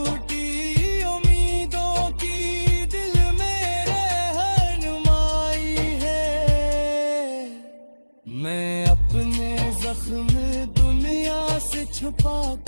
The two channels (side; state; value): both; inverted; correlation -1.00